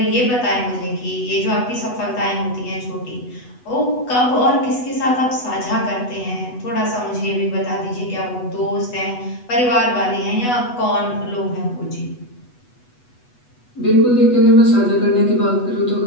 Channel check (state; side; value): late; right; 8.1 ms